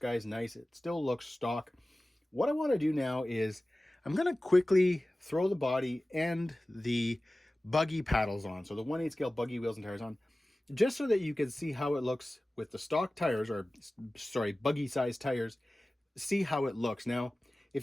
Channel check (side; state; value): both; normal; correlation 0.97